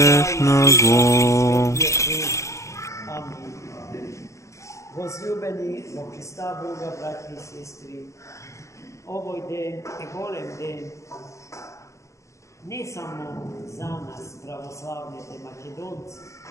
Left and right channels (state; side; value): late; right; 0.15 ms